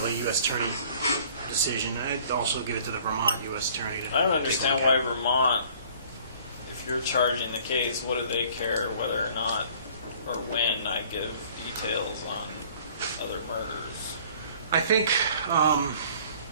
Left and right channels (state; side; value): inverted; both; correlation -0.53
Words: a U.S. Attorney decision. I'd also give it to the Vermont U.S. Attorney to I don't take a understand look why at. Vermont, if you're charging the case, what do they care whether or not or when I give details on other murders? I think